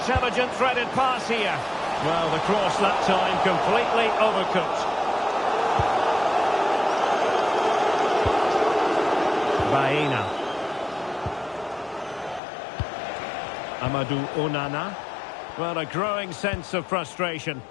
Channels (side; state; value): right; drops out; at 12.4 s